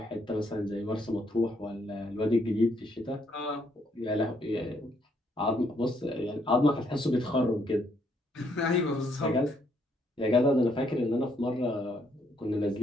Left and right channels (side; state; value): both; normal; correlation 0.72